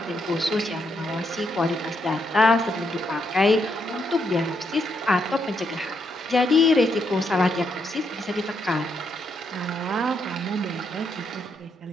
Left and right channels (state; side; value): normal; both; correlation 0.78